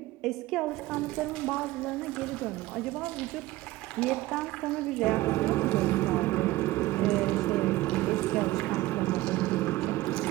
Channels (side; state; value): left; quieter; 17.7 dB